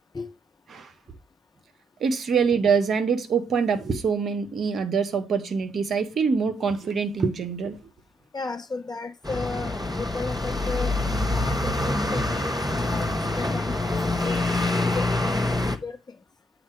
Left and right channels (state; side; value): normal; both; correlation 0.75